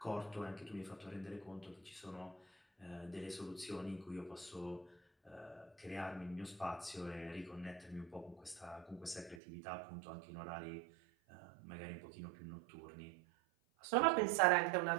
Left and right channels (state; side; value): drops out; left; at 9.4 s